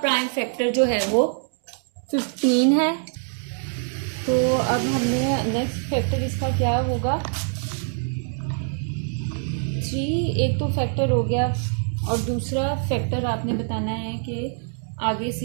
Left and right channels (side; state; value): left; silent; 55 dB below the other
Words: फैक्टर जो है वो 15 है। तो अब हमने नेक्स्ट फैक्टर इसका क्या होगा, 3 एक तो फैक्टर हो गया और दूसरा फैक्टर आपने बताना है कि आगे